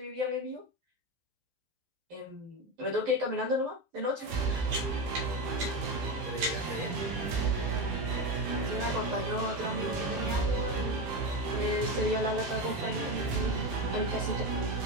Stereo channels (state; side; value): late; left; 12 ms